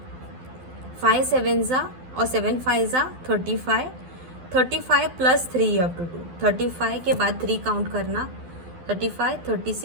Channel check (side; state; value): left; late; 12 ms